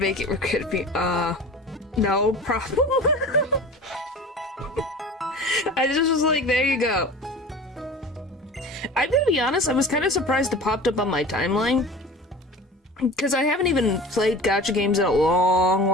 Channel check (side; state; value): both; normal; correlation 0.38